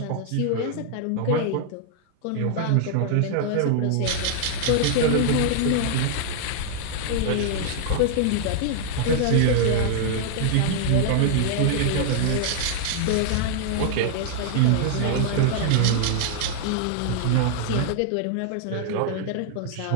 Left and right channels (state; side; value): different; both; correlation -0.01